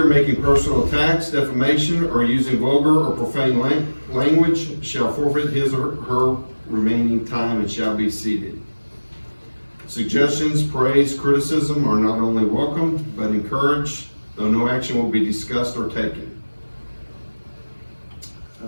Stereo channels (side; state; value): both; inverted; correlation -1.00